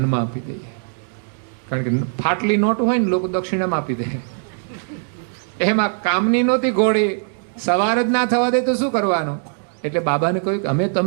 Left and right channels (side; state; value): left; silent; digital silence